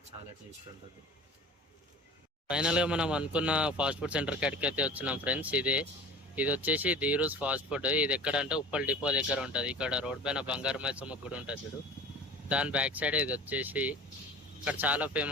చాలా టేస్ట్ ఉంటుంది. ఫైనల్గా మనం అనుకున్న ఫాస్ట్ ఫుడ్ సెంటర్ కాడికి అయితే వచ్చినాం ఫ్రెండ్స్. ఇది వచ్చేసి ధీరూస్ ఫాస్ట్ ఫుడ్. ఇది ఎక్కడంటే ఉప్పల్ డిపో దగ్గర ఉంటుంది. ఇక్కడ రోడ్ పైన బంగారు మైసమ్మ గుడి ఉంటుంది చూడు, దాని బ్యాక్ సైడ్ ఇది వచ్చేసి. ఇక్కడ చాలా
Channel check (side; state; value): both; normal; correlation 0.40